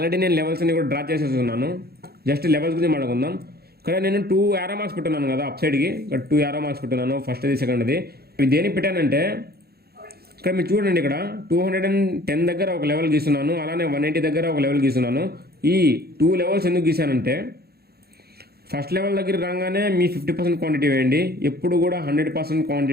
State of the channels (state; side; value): late; left; 0.46 ms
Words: నేను లెవెల్స్ అన్ని కూడా డ్రా చేసేస్తున్నాను. జస్ట్ లెవెల్స్ గురించి మాట్లాడుకుందాం. ఇక్కడ నేను 2 యారో మార్క్స్ పెట్టున్నాను కదా అప్ సైడ్కి, ఇక్కడ 2 యారో మార్క్స్ పెట్టున్నాను, ఫస్ట్ది సెకండ్ది. ఇవి దేనికి పెట్టానంటే ఇక్కడ మీరు చూడండి, ఇక్కడ 210 దగ్గర ఒక లెవెల్ గీస్తున్నాను, అలానే 180 దగ్గర ఒక లెవెల్ గీస్తున్నాను. ఈ 2 లెవెల్స్ ఎందుకు గీసానంటే, ఫస్ట్ లెవెల్ దగ్గర రాగానే మీ 50% క్వాంటిటీ వేయండి. ఎప్పుడు కూడా 100%